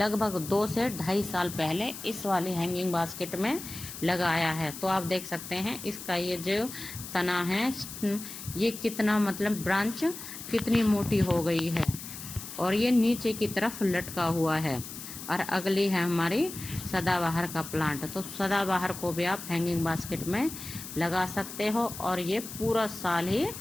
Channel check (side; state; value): left; noise; hiss, 11 dB below the sound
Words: 2 से 2.5 साल पहले इस वाली हैंगिंग बास्केट में लगाया है। तो आप देख सकते हैं इसका ये जो तना है ये कितना, मतलब ब्रांच कितनी मोटी हो गई है और ये नीचे की तरफ लटका हुआ है। और अगली है हमारी सदाबहार का प्लांट। तो सदाबहार को भी आप हैंगिंग बास्केट में लगा सकते हो और ये पूरा साल ही